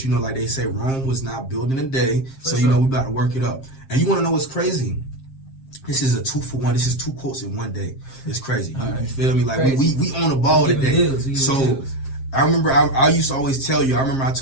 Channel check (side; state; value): right; late; 7.5 ms